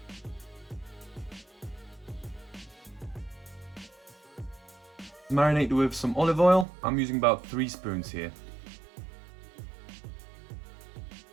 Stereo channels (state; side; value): drops out; left; at 6.7 s